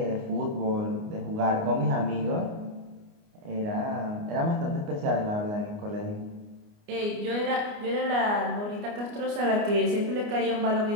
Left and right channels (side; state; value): left; late; 29 ms